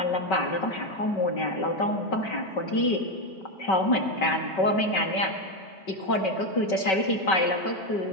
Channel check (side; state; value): right; late; 5.2 ms